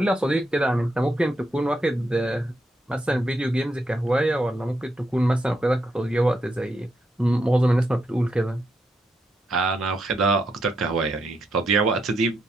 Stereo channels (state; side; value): normal; both; correlation 0.81